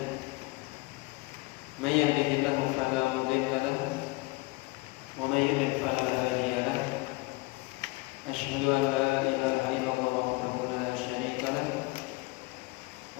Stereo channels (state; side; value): quieter; right; 23.6 dB